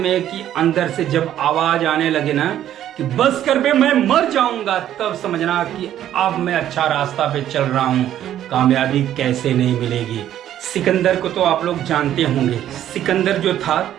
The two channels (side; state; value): left; quieter; 11.5 dB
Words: कि अंदर से जब आवाज़ आने लगे ना कि बस कर बे मैं मर जाऊंगा, तब समझना कि अब मैं अच्छा रास्ता पे चल रहा हूँ, कामयाबी कैसे नहीं मिलेगी। सिकंदर को तो आप लोग जानते होंगे। सिकंदर जो था